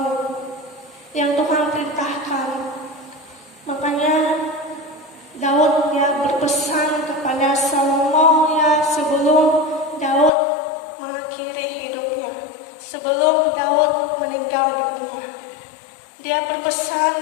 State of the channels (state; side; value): drops out; right; at 10.3 s